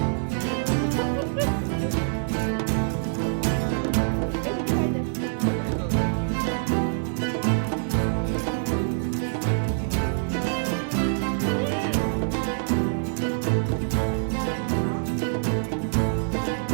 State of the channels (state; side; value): silent; left; digital silence